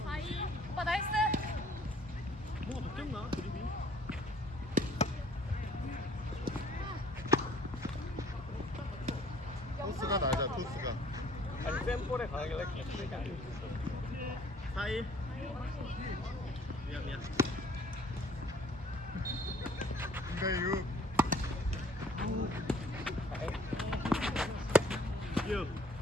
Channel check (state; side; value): normal; both; correlation 0.57